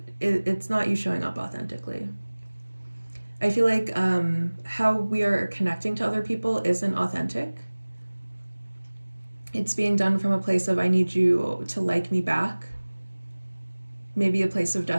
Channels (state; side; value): inverted; both; correlation -1.00